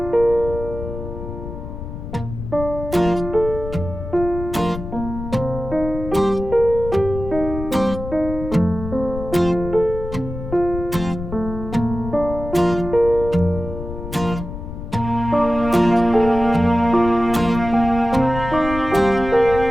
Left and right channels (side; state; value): left; noise; rumble, 9 dB below the sound